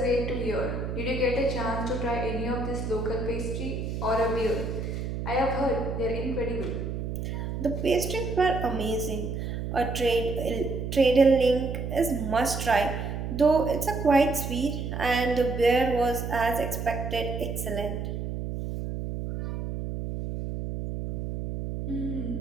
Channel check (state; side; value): noise; right; hum, 4 dB below the sound